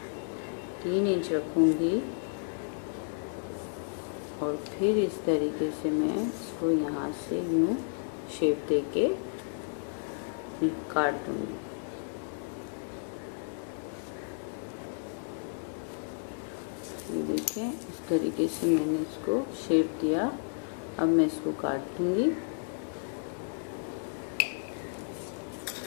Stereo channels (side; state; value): right; silent; digital silence